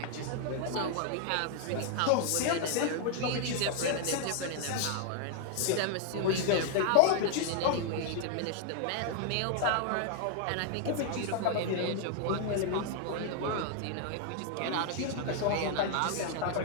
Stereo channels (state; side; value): different; both; correlation 0.00